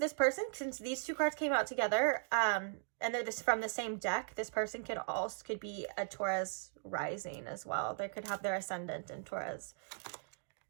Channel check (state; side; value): silent; left; digital silence